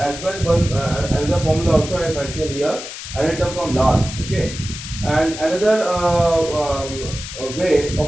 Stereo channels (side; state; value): left; noise; hiss, 10 dB below the sound